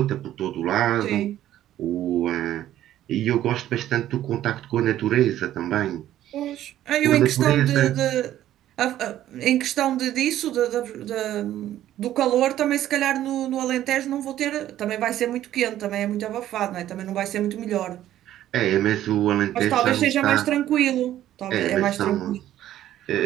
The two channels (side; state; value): left; quieter; 12.7 dB